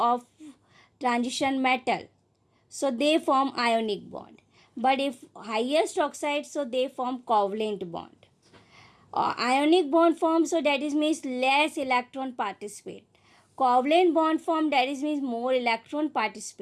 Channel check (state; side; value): identical; both; correlation 1.00